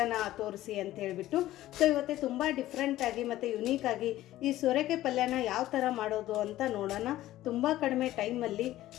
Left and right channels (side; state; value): right; quieter; 14.8 dB